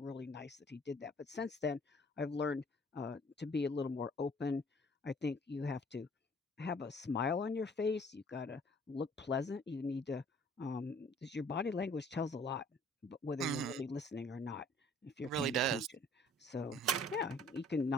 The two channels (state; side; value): normal; both; correlation 0.56